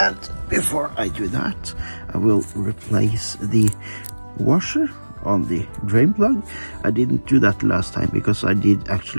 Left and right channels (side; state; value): both; inverted; correlation -1.00